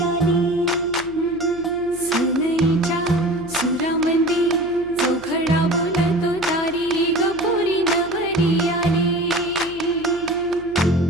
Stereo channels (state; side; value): noise; right; hum, 22 dB below the sound